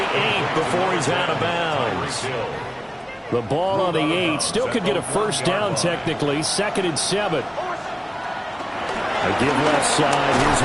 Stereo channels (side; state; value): both; identical; correlation 1.00